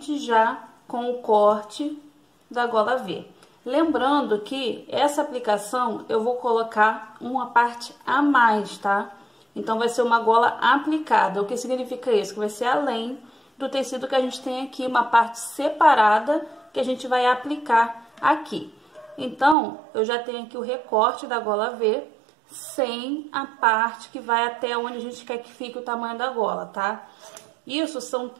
já com o corte da gola V. Lembrando que essa aplicação eu vou colocar uma parte a mais, tá? Então vai ser uma gola aplicada. O que significa isso? Que vai ser além do tecido que a gente tem aqui, uma parte separada que a gente vai aplicar aqui. Então, eu já tenho aqui o recorte da gola V, sem a parte que vai até onde a gente quer que fique o tamanho da gola, tá? Isso são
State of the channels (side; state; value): left; drops out; at 19.6 s